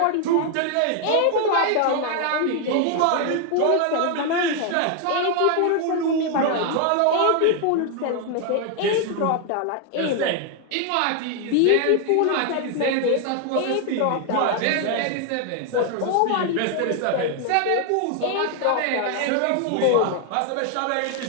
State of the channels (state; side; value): different; both; correlation 0.00